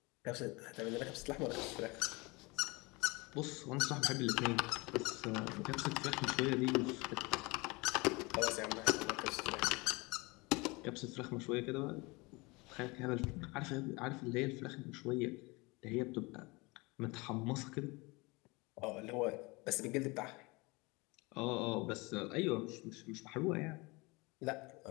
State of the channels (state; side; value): quieter; right; 25.3 dB